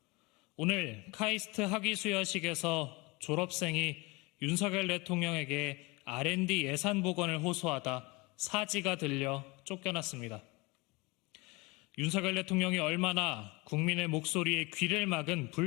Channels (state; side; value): quieter; right; 25.0 dB